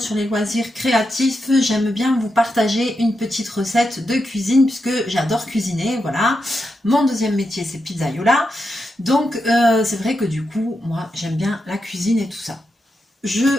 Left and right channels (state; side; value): normal; both; correlation 0.86